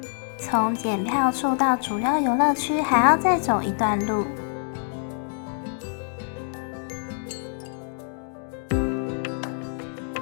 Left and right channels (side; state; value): right; silent; 61 dB below the other